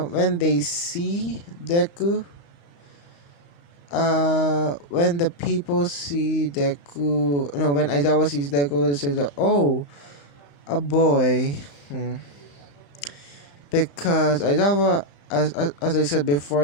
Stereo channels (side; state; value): right; late; 35 ms